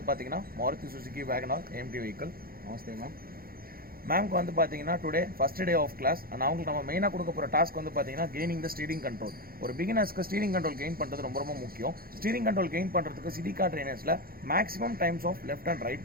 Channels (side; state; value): left; late; 0.43 ms